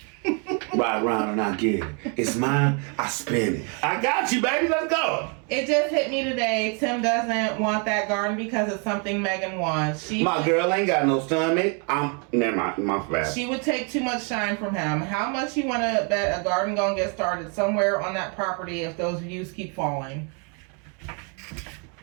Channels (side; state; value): left; quieter; 36.6 dB